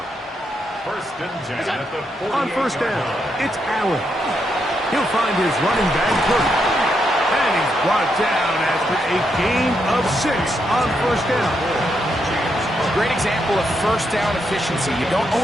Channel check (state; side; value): normal; both; correlation 0.80